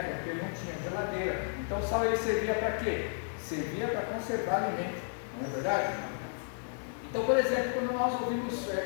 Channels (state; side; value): silent; right; digital silence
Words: porque não tinha geladeira, então o sal ele servia para quê? Servia para conservar alimento, não é verdade? Então, por exemplo, quando nós ouvimos